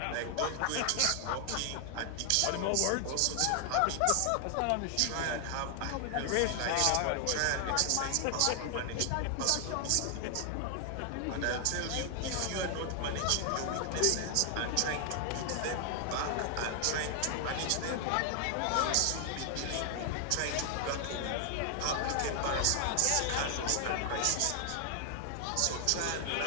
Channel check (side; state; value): both; different; correlation 0.00